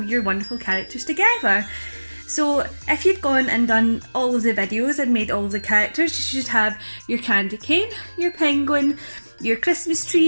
your wonderful characters together. So if you've gone and done all of the videos and made all the characters, you should have your candy cane, your penguin, your Christmas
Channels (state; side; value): inverted; both; correlation -1.00